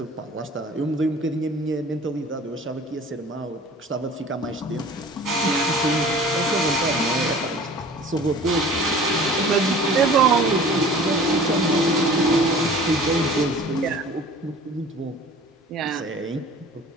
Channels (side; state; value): both; normal; correlation 0.45